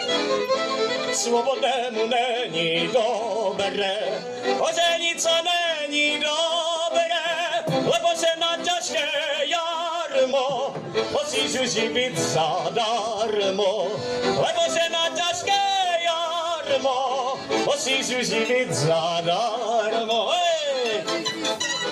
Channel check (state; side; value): identical; both; correlation 1.00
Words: Svobodnému není dobré, oženit sa není dobré, lebo se na ťažké jarmo musíš živit zadarmo. Lebo se na ťažké jarmo musíš živit zadarmo. Hej!